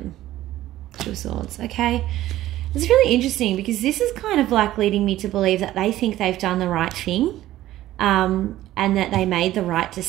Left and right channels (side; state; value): left; quieter; 14.5 dB